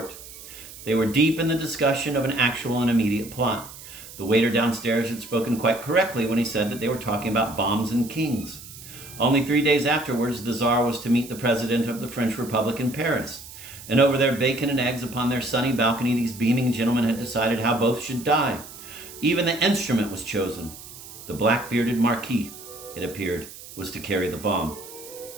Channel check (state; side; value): noise; right; hiss, 16 dB below the sound